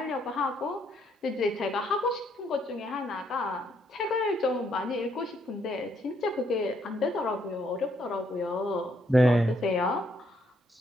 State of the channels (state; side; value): normal; both; correlation 0.72